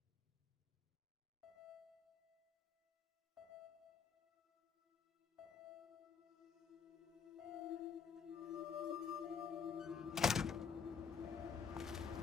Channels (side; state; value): right; quieter; 6.4 dB